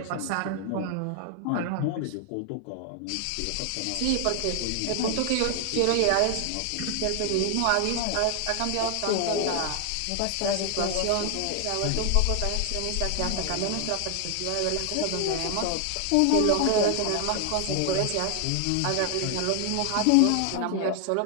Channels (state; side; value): different; both; correlation 0.00